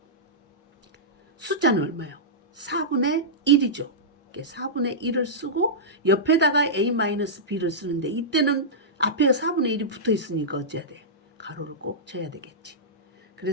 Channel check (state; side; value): normal; both; correlation -0.14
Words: 숫자는 얼마요? 4분의 1이죠. 4분의 1을 쓰고 옆에다가 a-b를 쓰는데 이때는 앞에 4분의 1이 붙어 있으니까 어찌해야 돼? 가로를 꼭 쳐야 되겠지.